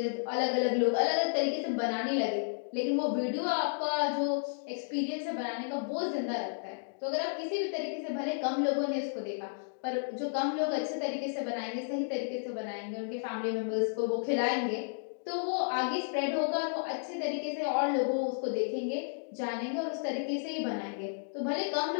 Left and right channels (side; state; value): right; silent; digital silence